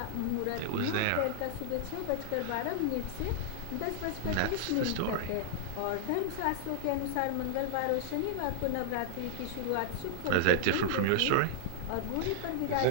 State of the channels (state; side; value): different; both; correlation -0.01